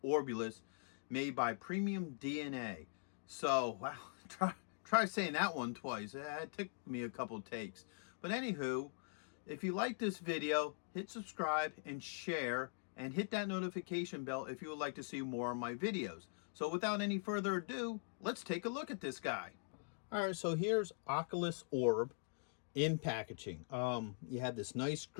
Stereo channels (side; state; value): right; silent; digital silence